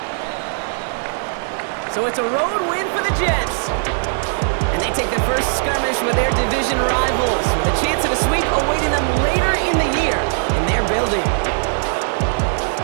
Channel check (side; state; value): left; silent; digital silence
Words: So it's a road win for the Jets. And they take their first skirmish with their division rivals, with a chance at a sweep awaiting them later in the year in their building.